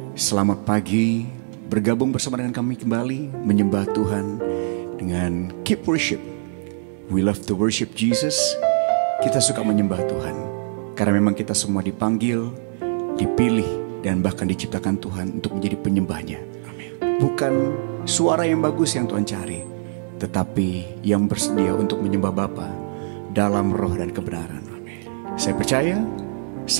Selamat pagi. Bergabung bersama dengan kami kembali menyembah Tuhan dengan Keep Worship. We love to worship Jesus. Kita suka menyembah Tuhan karena memang kita semua dipanggil, dipilih, dan bahkan diciptakan Tuhan untuk menjadi penyembahnya. Bukan suara yang bagus yang Tuhan cari, tetapi yang bersedia untuk menyembah Bapa dalam roh dan kebenaran. Saya percaya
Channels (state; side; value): silent; left; digital silence